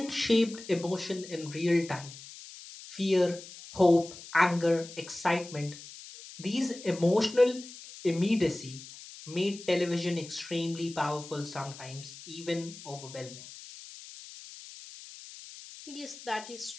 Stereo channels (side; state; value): left; noise; hiss, 15 dB below the sound